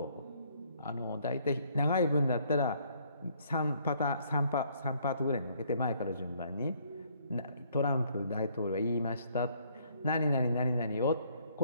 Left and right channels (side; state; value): both; inverted; correlation -0.65